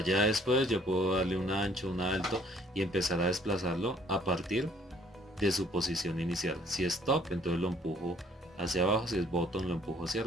ya después yo puedo darle un ancho, un alto y empezar a desplazarlo a partir de su posición inicial. Si es top, entonces lo empujo hacia abajo, si es bottom lo empujo hacia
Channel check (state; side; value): normal; both; correlation 0.60